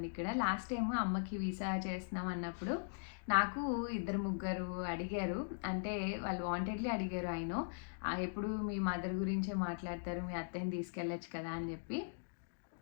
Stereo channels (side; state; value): right; silent; digital silence